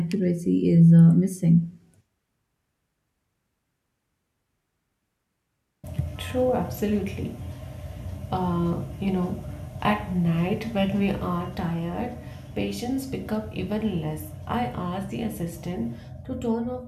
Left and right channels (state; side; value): identical; both; correlation 1.00